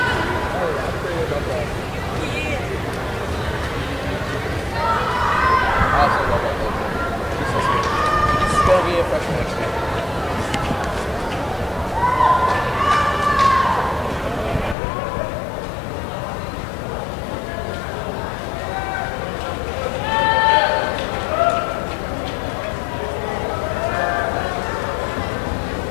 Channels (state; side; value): drops out; right; at 14.8 s